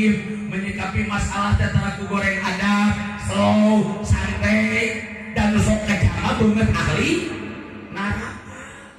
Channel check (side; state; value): both; identical; correlation 1.00